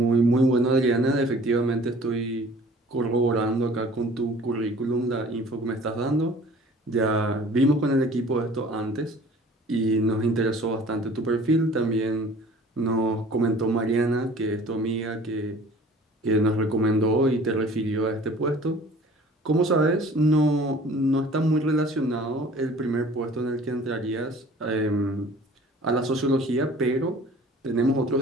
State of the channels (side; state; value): both; normal; correlation 0.48